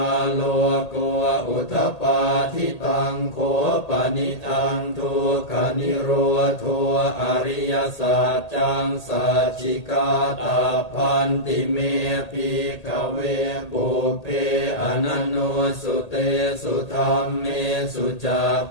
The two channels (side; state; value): right; late; 1.8 ms